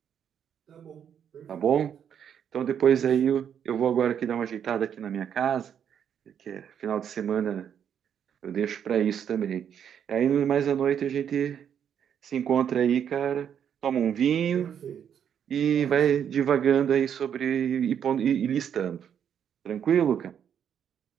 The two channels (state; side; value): quieter; left; 8.5 dB